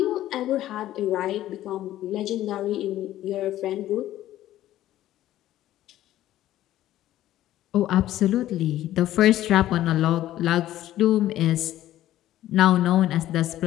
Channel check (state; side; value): quieter; right; 13.7 dB